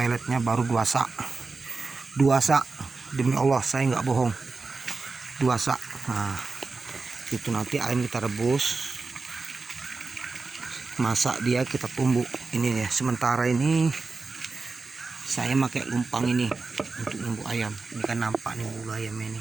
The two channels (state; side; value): quieter; left; 4.0 dB